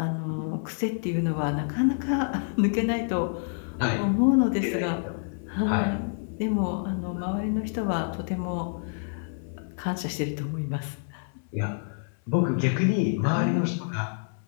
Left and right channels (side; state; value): right; silent; 59 dB below the other